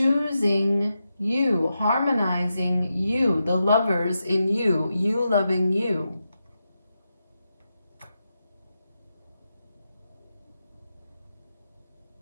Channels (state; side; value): inverted; both; correlation -0.88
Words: you, harmonizing you, the lovers in you, you loving you.